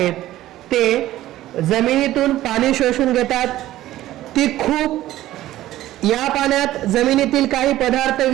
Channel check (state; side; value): quieter; left; 14.7 dB